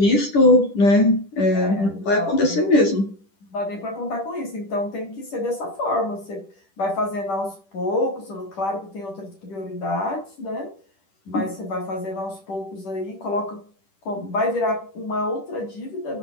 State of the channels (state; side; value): late; right; 10 ms